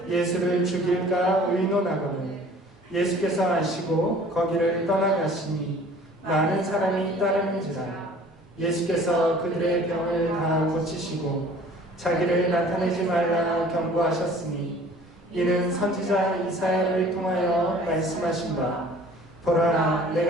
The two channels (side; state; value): both; normal; correlation 0.49